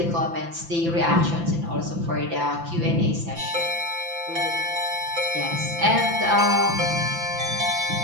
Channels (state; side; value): late; left; 5.9 ms